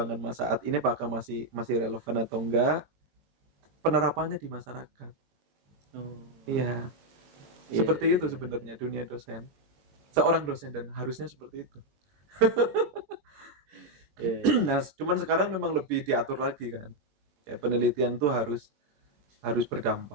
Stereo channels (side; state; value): left; late; 21 ms